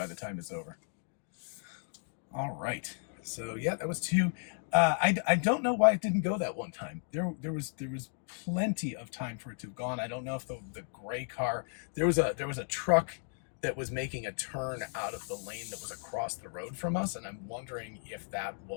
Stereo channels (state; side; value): silent; right; 55 dB below the other